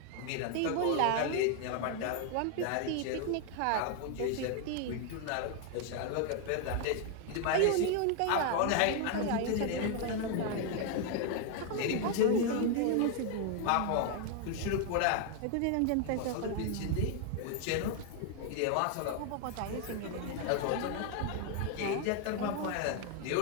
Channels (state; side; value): different; both; correlation 0.00